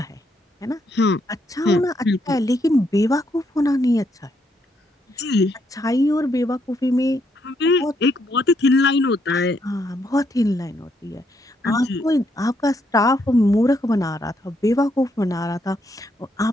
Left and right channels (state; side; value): normal; both; correlation 0.75